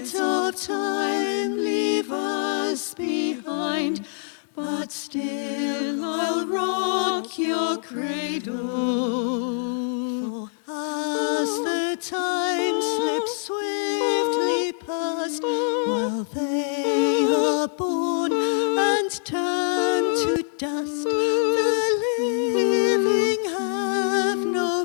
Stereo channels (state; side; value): silent; right; digital silence